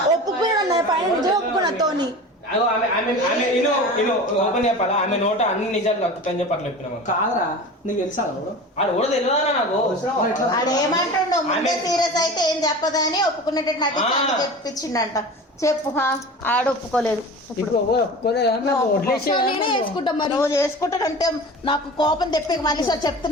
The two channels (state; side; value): normal; both; correlation 0.34